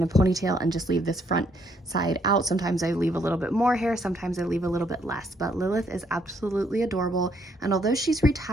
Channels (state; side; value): normal; both; correlation 0.71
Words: a ponytail and just leave this front side out. Sometimes I leave a little bit more hair, sometimes I leave a little bit less, but Lilith is absolutely adorable. And although she's